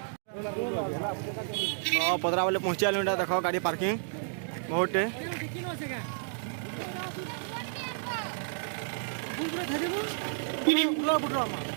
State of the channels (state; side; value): silent; left; digital silence